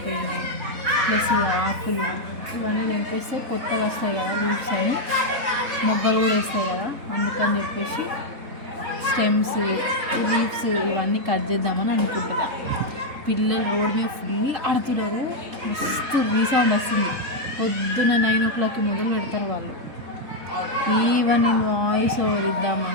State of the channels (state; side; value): late; left; 3.7 ms